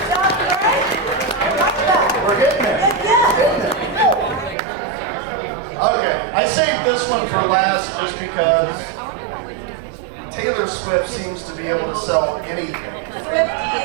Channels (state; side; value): drops out; left; at 4.5 s